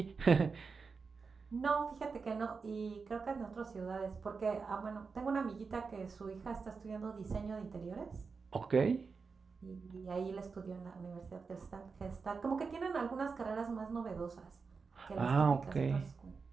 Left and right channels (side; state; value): left; quieter; 4.9 dB